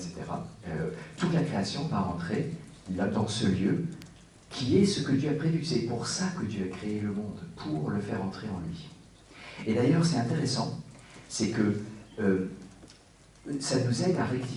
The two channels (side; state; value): both; identical; correlation 1.00